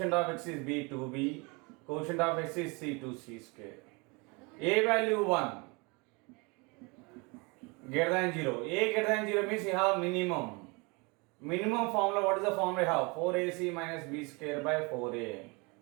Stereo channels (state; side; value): quieter; left; 28.6 dB